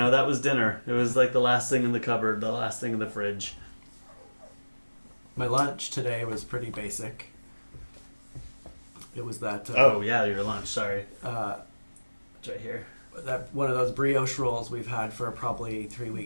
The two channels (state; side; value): inverted; both; correlation -1.00